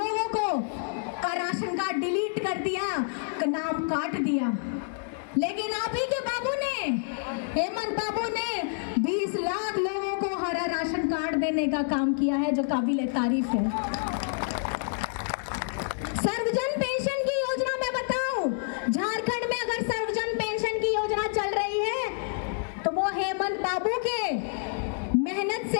को का राशन कार्ड डिलीट कर दिया, नाम काट दिया। लेकिन आप ही के बाबू ने, हेमंत बाबू ने 20 लाख लोगों को हरा राशन कार्ड देने का काम किया है, जो काबिल तारीफ है। सर्वजन पेंशन की योजना में बताऊं, झारखंड में अगर सर्वजन पेंशन की योजना चल रही है तो वो हेमंत बाबू के मेहनत से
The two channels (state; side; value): silent; right; 59 dB below the other